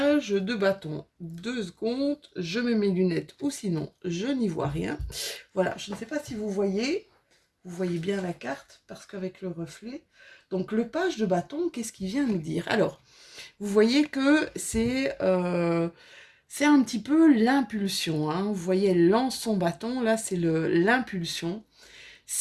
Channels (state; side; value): identical; both; correlation 1.00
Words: de bâton. 2 secondes, je mets mes lunettes ou sinon je n'y vois rien. Voilà, je ne sais pas si vous voyez bien la carte parce qu'avec le reflet. Donc le page de bâton, qu'est-ce qu'il vient nous dire? Alors, vous voyez que c'est un petit peu l'impulsion, hein. Vous voyez, elle lance son bâton, là c'est l'impulsion.